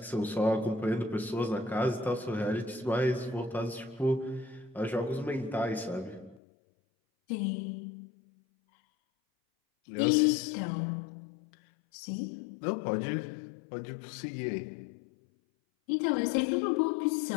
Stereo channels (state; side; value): drops out; right; at 6.4 s